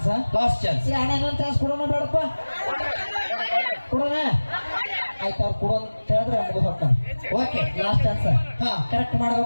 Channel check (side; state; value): both; inverted; correlation -1.00